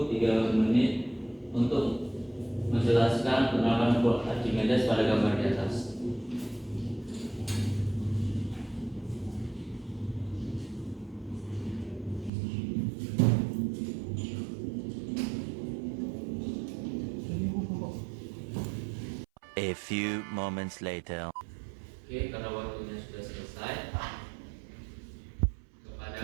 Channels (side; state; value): left; drops out; at 12.3 s